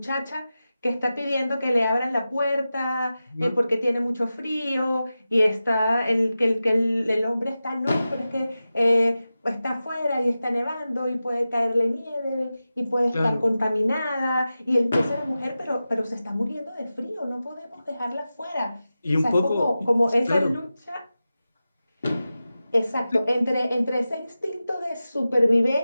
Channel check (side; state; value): both; inverted; correlation -0.94